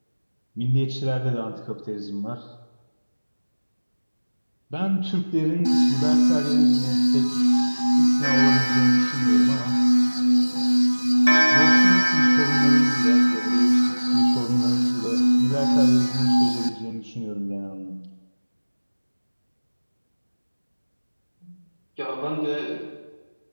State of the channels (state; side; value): inverted; both; correlation -1.00